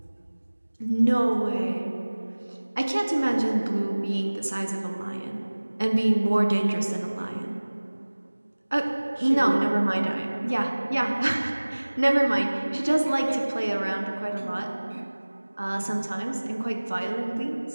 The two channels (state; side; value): inverted; both; correlation -1.00